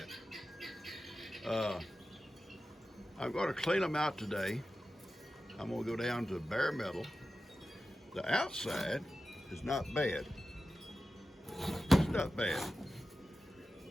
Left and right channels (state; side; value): normal; both; correlation 0.93